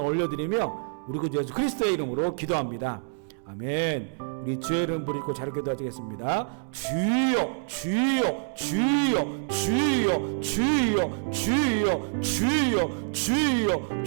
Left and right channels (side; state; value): left; silent; 60 dB below the other